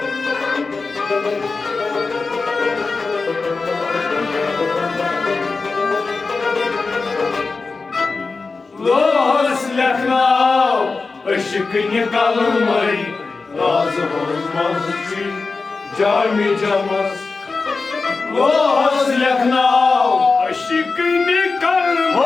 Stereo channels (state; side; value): quieter; right; 4.1 dB